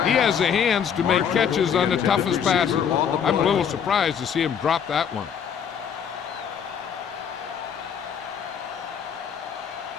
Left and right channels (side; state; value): right; quieter; 7.7 dB